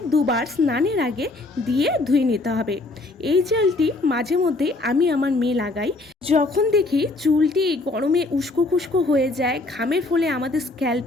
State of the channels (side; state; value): right; quieter; 3.0 dB